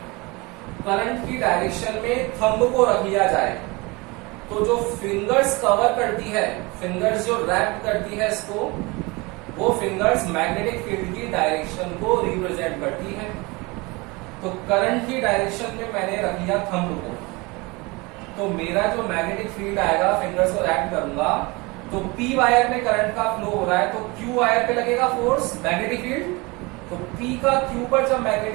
करंट की डायरेक्शन में थंब को रख लिया जाए तो जो फिंगर्स कवर करती है, फिंगर्स जो रैप करती है इसको, वो फिंगर्स मैग्नेटिक फील्ड की डायरेक्शन को रिप्रेजेंट करती है। तो करंट की डायरेक्शन में मैंने रख लिया थंब को, तो मेरा जो मैग्नेटिक फील्ड आएगा, फिंगर्स को रैप करूंगा, तो P वायर में करंट का फ्लो हो रहा है, तो Q वायर पे लगेगा फोर्स मैग्नेटिक फील्ड। तो P का Q पर जब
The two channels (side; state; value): left; quieter; 25.3 dB